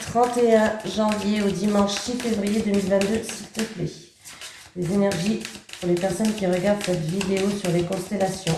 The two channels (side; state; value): both; identical; correlation 1.00